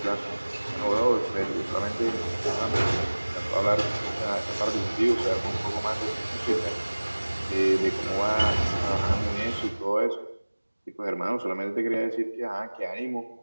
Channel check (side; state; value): both; inverted; correlation -1.00